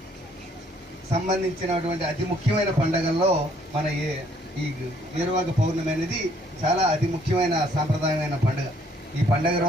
సంబంధించినటువంటి అతి ముఖ్యమైన పండుగల్లో మన ఈ ఏరువాక పౌర్ణమి అనేది చాలా అతి ముఖ్యమైన సాంప్రదాయమైన పండుగ. ఈ పండుగ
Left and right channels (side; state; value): both; normal; correlation 0.64